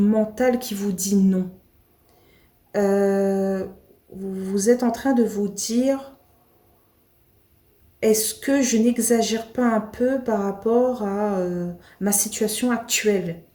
mental qui vous dit non. Vous êtes en train de vous dire, est-ce que je n'exagère pas un peu par rapport à ma situation actuelle?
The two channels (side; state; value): both; identical; correlation 1.00